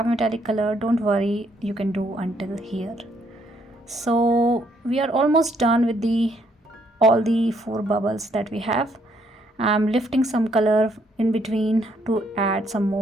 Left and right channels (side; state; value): both; normal; correlation 0.71